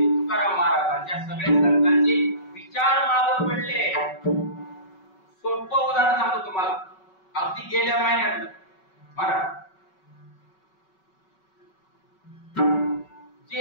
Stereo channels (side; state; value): right; late; 5.3 ms